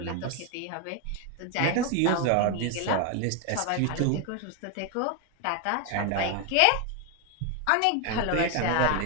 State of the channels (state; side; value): different; both; correlation 0.01